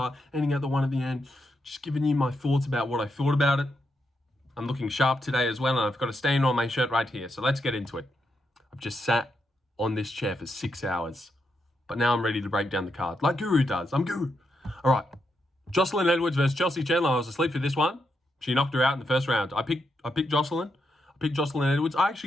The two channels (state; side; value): normal; both; correlation 0.82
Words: ending at the one at the end. Just giving you my thoughts about what I thought about it. I'm looking sharp today as well, and I've got a stain on my shirt right here, so let's get into it. I've just sat on this chair for 6 hours, but now I'm ready to break down the card, like Guru does. I'm Guru. All right, Joselyne Edwards versus Chelsea Chandler. I was asleep for this one. She knocked her out in the first round. I picked Joselyne. I picked Joselyne Edwards. I